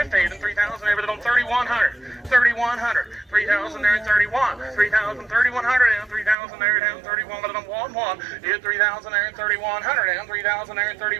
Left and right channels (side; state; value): left; drops out; at 6.4 s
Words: then 3,000 there, but on 3,100, 3,100, 3,000 there, 31, 3,000, 3,100, and 3,000 there, down 31, but on 1, hit 3,000 there, 3,100, and 3,000 there,